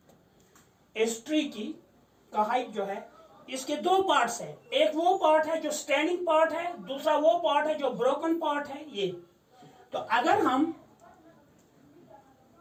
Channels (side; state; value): both; identical; correlation 1.00